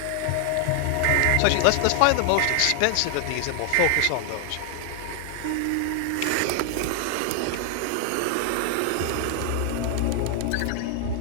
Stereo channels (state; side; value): different; both; correlation 0.00